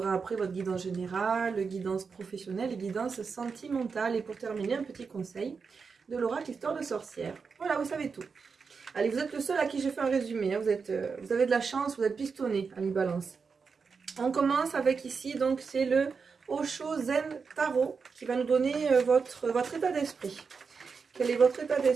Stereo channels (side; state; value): left; quieter; 5.3 dB